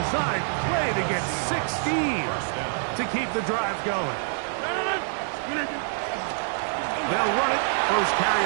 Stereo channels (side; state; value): left; silent; 61 dB below the other